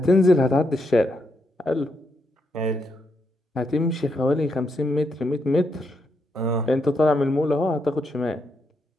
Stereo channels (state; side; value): normal; both; correlation 0.80